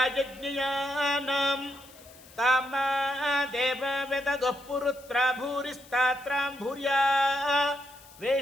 ತಾಮಾ ದೇವವೆದಗಃ ಪುರುತ್ರ ಭೂರಿಸ್ತಾತ್ರಾಂ ಭೂರ್ಯಾ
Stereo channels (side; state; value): left; noise; hiss, 23 dB below the sound